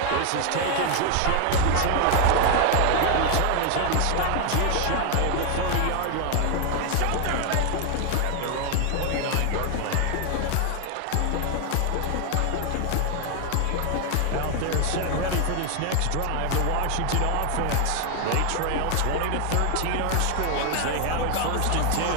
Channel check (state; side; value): different; both; correlation 0.01